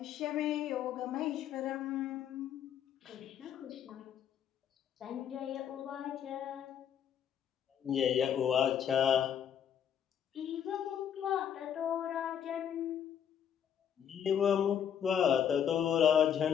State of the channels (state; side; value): quieter; right; 8.9 dB